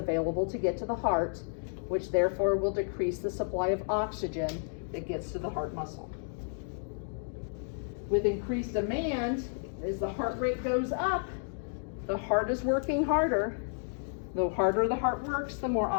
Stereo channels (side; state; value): right; silent; digital silence